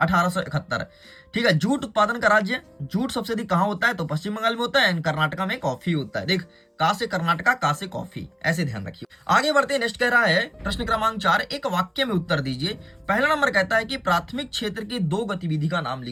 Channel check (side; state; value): both; identical; correlation 1.00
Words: ठीक है। जूट उत्पादन का राज्य, जूट सबसे अधिक कहां होता है, तो पश्चिम बंगाल में होता है, कर्नाटका में कॉफी होता है। देख, का से कर्नाटका, का से कॉफी, ऐसे ध्यान रखिए। आगे बढ़ते हैं। नेक्स्ट कह रहा है प्रश्न क्रमांक 4, एक वाक्य में उत्तर दीजिए। पहला नंबर कहता है कि प्राथमिक क्षेत्र की 2 गतिविधि का नाम